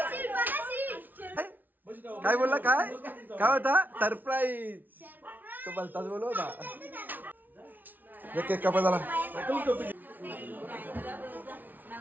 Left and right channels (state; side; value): late; left; 0.085 ms